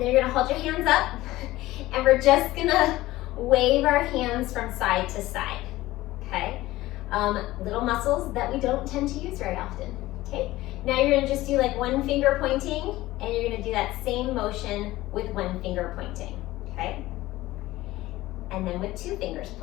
then you're gonna hold your hands up, and we're just gonna wave our hands from side to side, okay? Little muscles that we don't tend to use very often, okay? Now you're gonna just do like one finger pointing, and you're gonna do that same motion with one finger pointing, okay? And then with two fingers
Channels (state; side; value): quieter; right; 17.3 dB